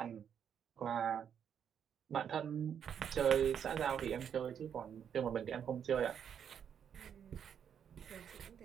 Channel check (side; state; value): left; quieter; 8.3 dB